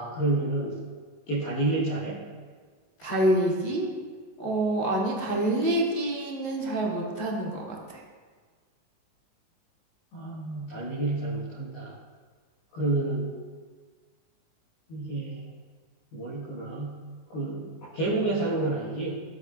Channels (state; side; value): late; right; 19 ms